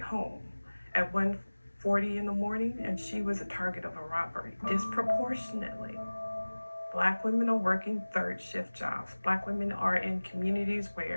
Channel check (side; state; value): both; inverted; correlation -1.00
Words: at 1:40 in the morning, and she was a target of a robbery. Disproportionately, Black women are working third shift jobs. Black women are in communities